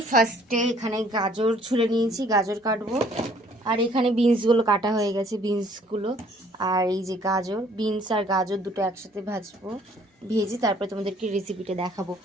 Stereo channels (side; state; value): both; normal; correlation 0.60